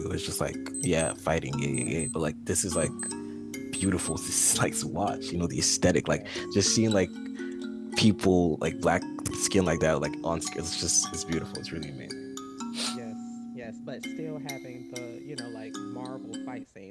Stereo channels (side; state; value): both; identical; correlation 1.00